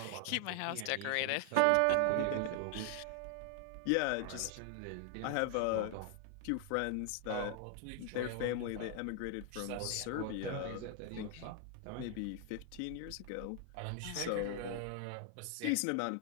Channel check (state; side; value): different; both; correlation 0.00